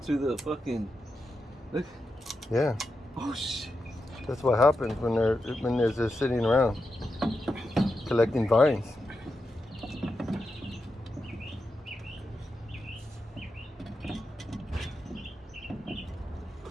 the fucking. Look. Yeah. Oh shit. That's what happens when they're just sitting around collecting vines.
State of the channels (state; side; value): normal; both; correlation 0.88